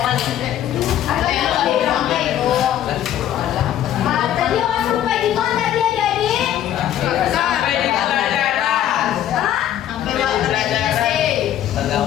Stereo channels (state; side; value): quieter; right; 11.4 dB